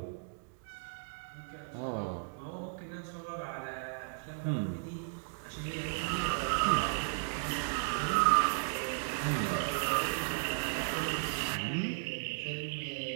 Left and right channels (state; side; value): silent; left; digital silence